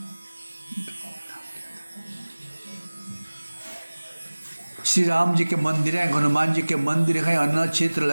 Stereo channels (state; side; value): inverted; both; correlation -1.00